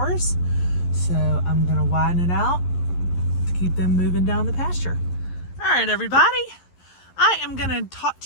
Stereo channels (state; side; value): late; right; 11 ms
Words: So I'm gonna widen it out to keep them moving down the pasture. All right, everybody. I am gonna talk